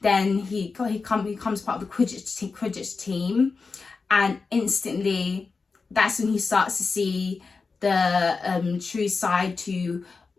he becomes part of the Quidditch team, and instantly, that's when he starts to see the true side to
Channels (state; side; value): quieter; right; 4.5 dB